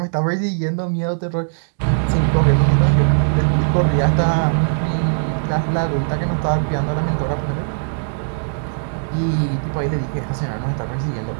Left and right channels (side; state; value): left; silent; digital silence